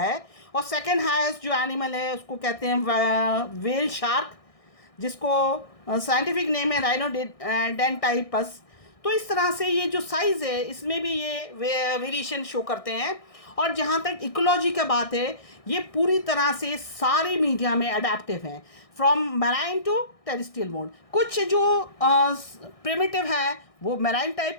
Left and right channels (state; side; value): late; right; 1.6 ms